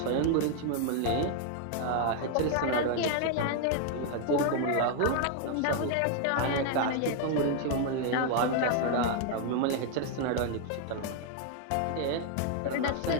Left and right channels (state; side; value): different; both; correlation 0.00